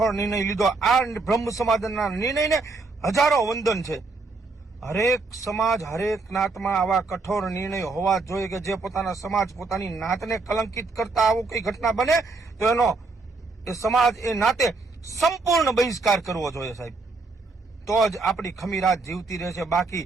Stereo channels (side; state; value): left; quieter; 3.7 dB